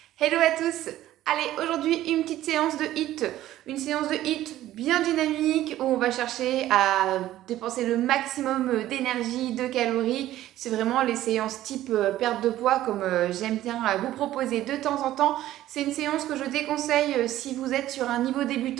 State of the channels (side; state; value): left; quieter; 14.0 dB